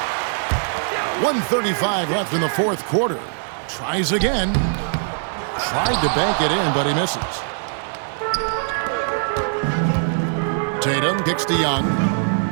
1:35 left in the fourth quarter. Tries again. Tried to bank it in, but he misses. Tatum kicks to Young.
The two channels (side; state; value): left; silent; digital silence